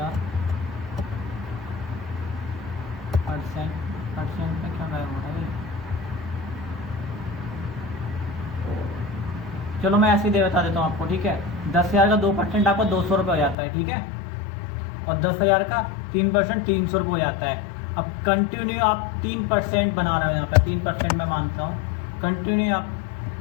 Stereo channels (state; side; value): drops out; right; at 13.6 s